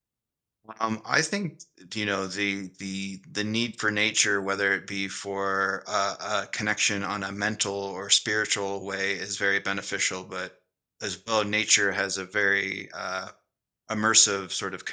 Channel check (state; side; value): identical; both; correlation 1.00